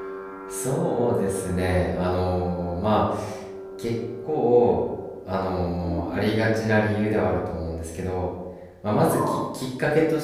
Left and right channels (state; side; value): identical; both; correlation 1.00